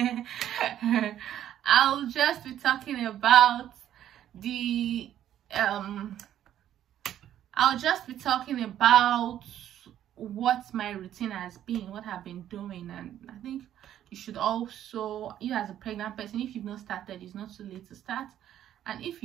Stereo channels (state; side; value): quieter; left; 11.2 dB